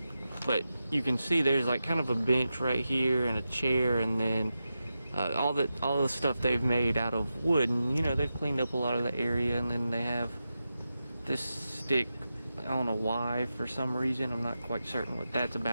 but you can see there's like kind of a bench right here and a chair, and then all the stuff they've made out of wood, and you know, they've cleaned up a lot of the area, and then they have this stick. I don't know why, for some reason. I'm not quite certain what that's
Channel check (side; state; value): both; inverted; correlation -0.91